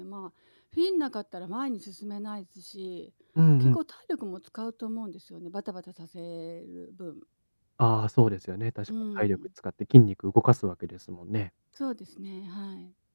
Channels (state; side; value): inverted; both; correlation -1.00